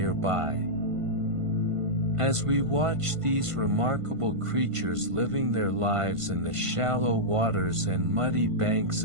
As we watch these remarkable creatures living their lives in the shallow waters and muddy banks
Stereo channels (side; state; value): left; late; 1.5 ms